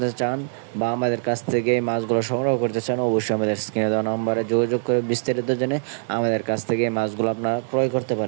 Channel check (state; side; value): silent; left; digital silence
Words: চান বা আমাদের কাছ থেকে এই মাছগুলো সংগ্রহ করতে চান, অবশ্যই আমাদের স্ক্রিনে দেওয়া নম্বরে যোগাযোগ করে বিস্তারিত জেনে আমাদের কাছ থেকে এই মাছগুলো আপনারা ক্রয় করতে